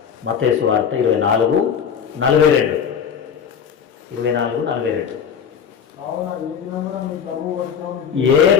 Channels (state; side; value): quieter; right; 7.5 dB